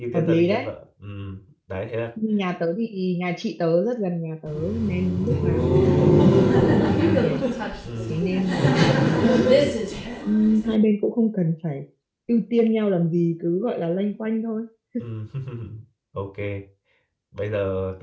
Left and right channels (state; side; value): identical; both; correlation 1.00